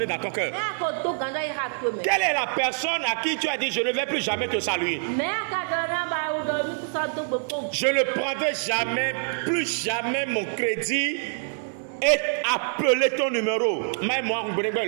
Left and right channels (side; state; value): left; silent; 57 dB below the other